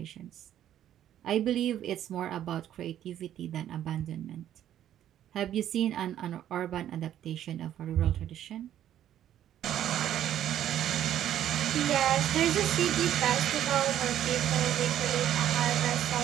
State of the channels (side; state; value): left; quieter; 11.3 dB